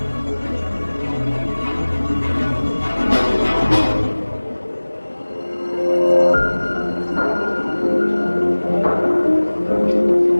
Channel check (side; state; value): both; inverted; correlation -1.00